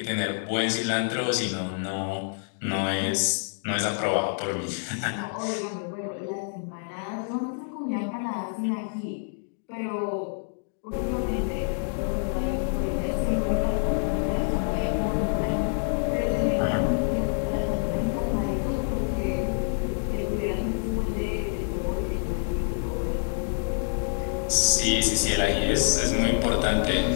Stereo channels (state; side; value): silent; right; digital silence